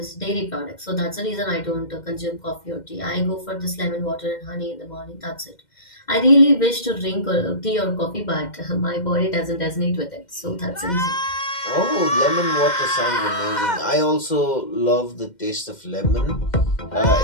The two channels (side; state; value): right; late; 2.1 ms